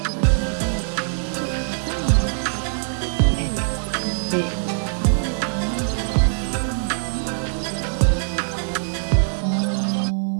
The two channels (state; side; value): silent; left; 64 dB below the other